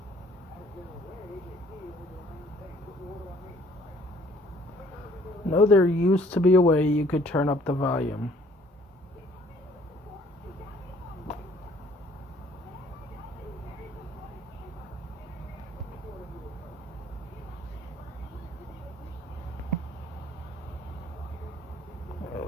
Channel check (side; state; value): both; normal; correlation 0.58